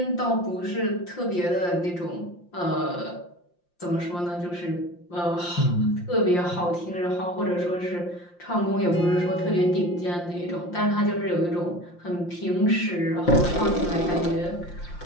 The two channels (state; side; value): late; right; 5.7 ms